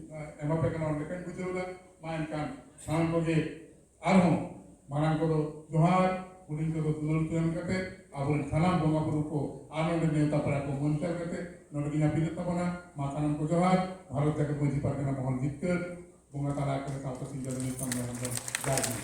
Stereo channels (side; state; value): both; identical; correlation 1.00